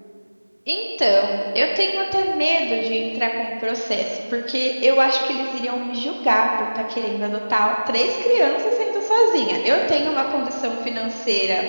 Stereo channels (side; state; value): both; inverted; correlation -1.00